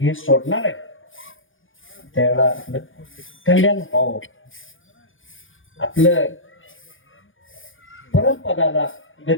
सोडणार आहे, त्यावेळेला आपलं कल्याण व्हावं. आपलं परमपदाला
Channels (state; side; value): late; right; 0.58 ms